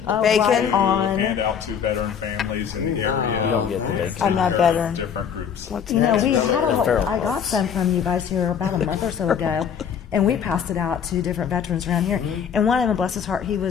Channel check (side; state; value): right; quieter; 7.6 dB